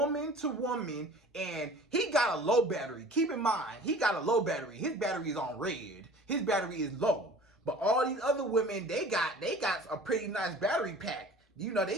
to woman, and he got a low battery. Keep in mind, he got a low battery. His battery is on red. His battery is low. But all these other women, they got a pretty nice battery pack. You know,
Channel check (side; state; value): both; normal; correlation 0.44